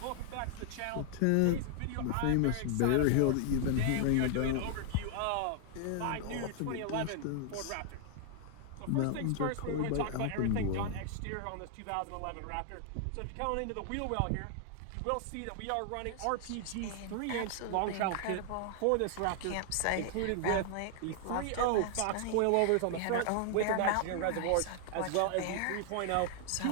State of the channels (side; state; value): both; different; correlation 0.00